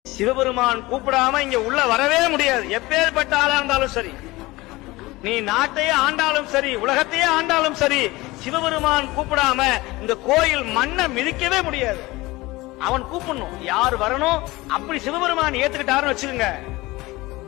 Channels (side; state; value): right; quieter; 20.6 dB